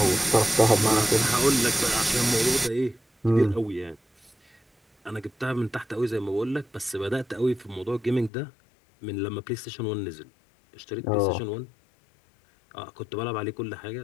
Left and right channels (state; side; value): drops out; right; at 8.3 s